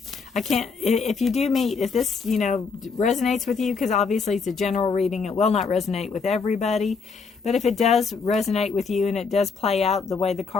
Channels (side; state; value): right; quieter; 5.0 dB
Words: can't, if you do meet, if this, resonates with you, because obviously it's a general reading, it will not resonate with everybody. But if it does resonate with you and it does play out the way the